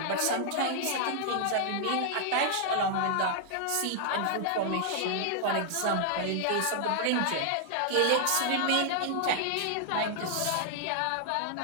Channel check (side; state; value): both; different; correlation 0.00